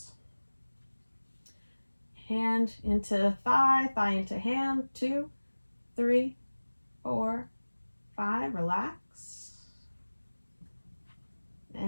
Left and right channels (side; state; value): both; inverted; correlation -1.00